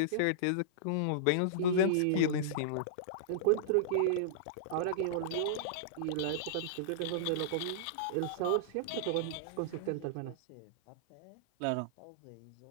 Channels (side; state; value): both; different; correlation -0.03